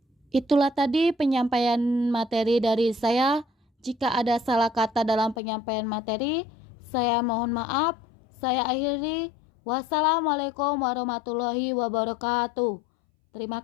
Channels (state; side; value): drops out; right; at 5.4 s